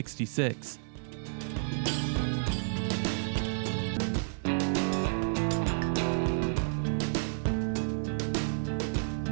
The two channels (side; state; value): left; silent; 57 dB below the other